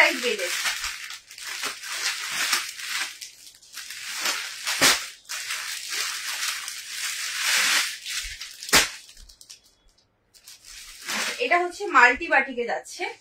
বেডের। এটা হচ্ছে মাল্টি বাটিকে যাচ্ছে,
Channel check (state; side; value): identical; both; correlation 1.00